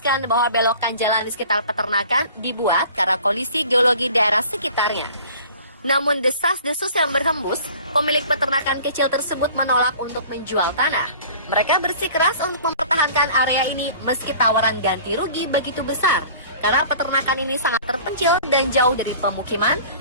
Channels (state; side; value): inverted; both; correlation -0.46